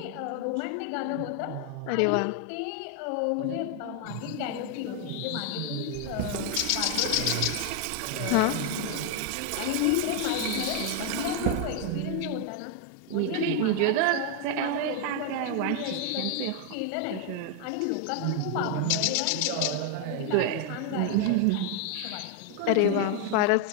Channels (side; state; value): both; different; correlation 0.00